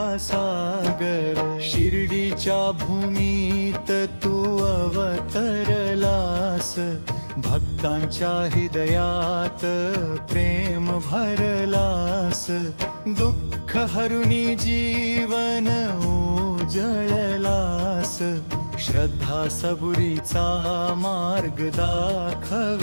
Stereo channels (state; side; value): inverted; both; correlation -1.00